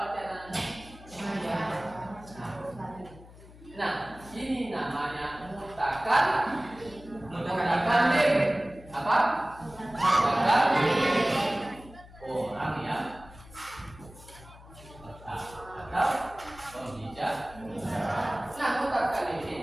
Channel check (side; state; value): left; noise; hum, 20 dB below the sound